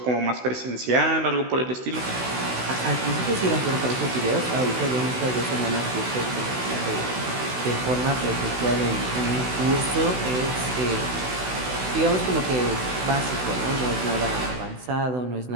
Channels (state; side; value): late; left; 16 ms